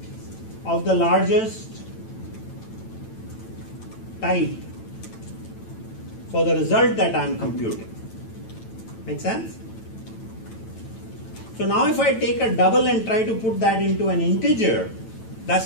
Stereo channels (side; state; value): right; late; 9.0 ms